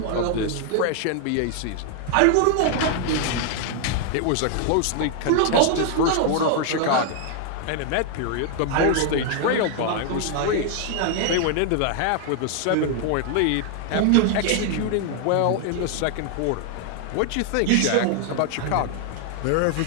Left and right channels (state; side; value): different; both; correlation 0.00